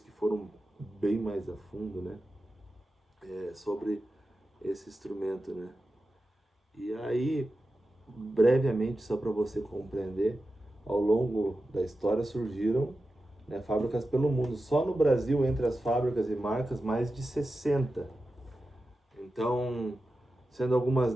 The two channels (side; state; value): both; normal; correlation 0.92